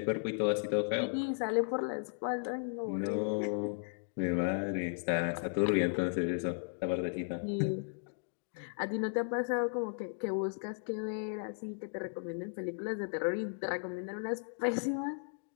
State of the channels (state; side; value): silent; right; digital silence